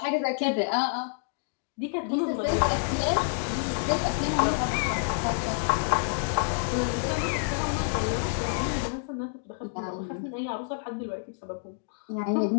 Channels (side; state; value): right; silent; digital silence